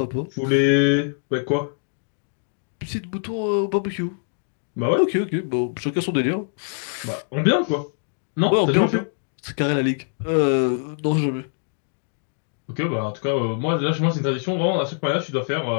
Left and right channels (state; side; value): silent; right; digital silence